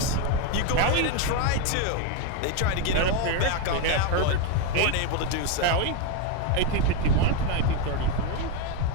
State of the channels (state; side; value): different; both; correlation 0.02